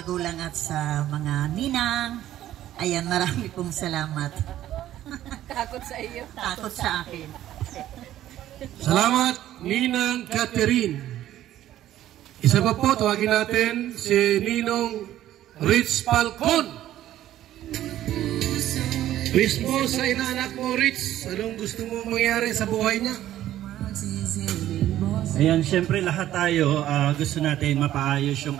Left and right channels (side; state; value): left; quieter; 12.9 dB